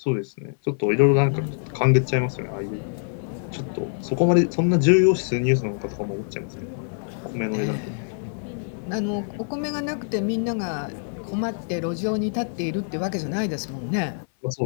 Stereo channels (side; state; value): right; silent; 58 dB below the other